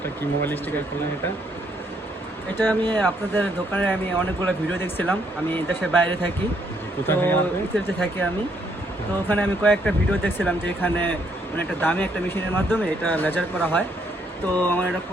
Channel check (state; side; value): normal; both; correlation 0.71